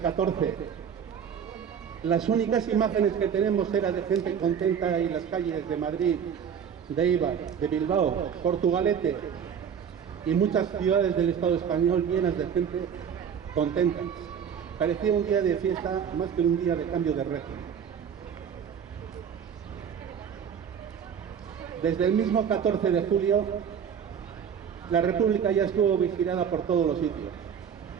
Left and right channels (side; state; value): left; quieter; 7.7 dB